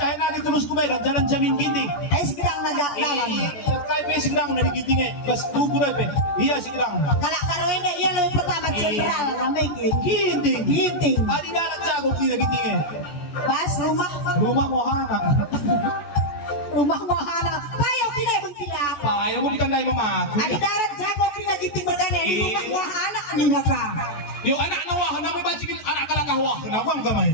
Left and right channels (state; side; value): late; right; 14 ms